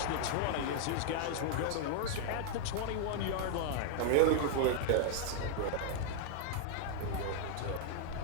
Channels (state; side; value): different; both; correlation 0.00